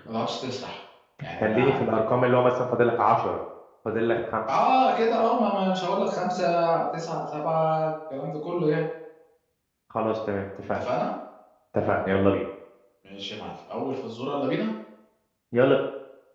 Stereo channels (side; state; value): both; identical; correlation 1.00